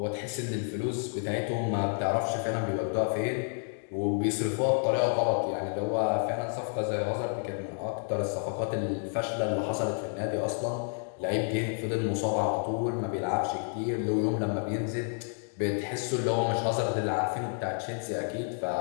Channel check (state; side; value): silent; right; 58 dB below the other